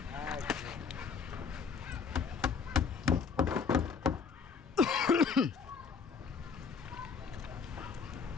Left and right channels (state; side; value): quieter; right; 5.8 dB